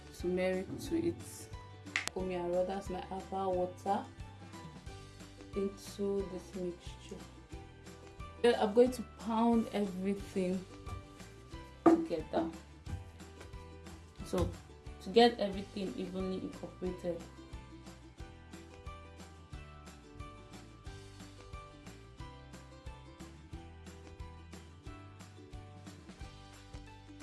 turmeric to it. That's my herbal water into this mixture. Then I'm going to pound everything together, so to get everything evenly incorporated.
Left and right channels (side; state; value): both; identical; correlation 1.00